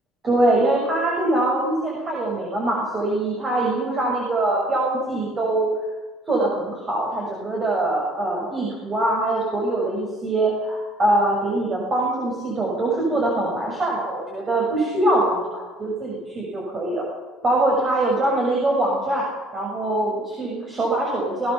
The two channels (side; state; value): both; normal; correlation 0.59